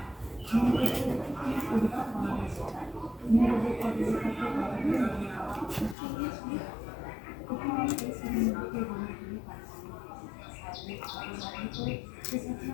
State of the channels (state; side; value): drops out; right; at 6.0 s